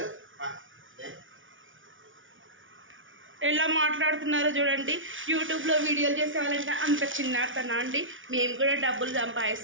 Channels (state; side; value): late; left; 0.57 ms